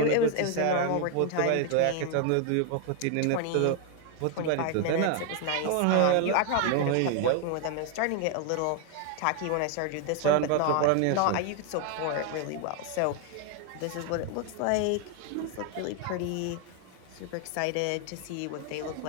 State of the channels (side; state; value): both; different; correlation 0.01